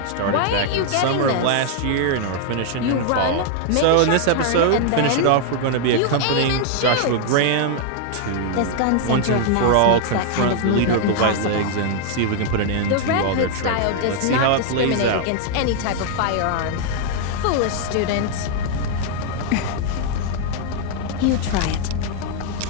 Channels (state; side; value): different; both; correlation 0.00